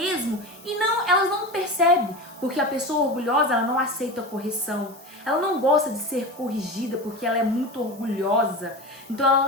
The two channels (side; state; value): both; normal; correlation 0.27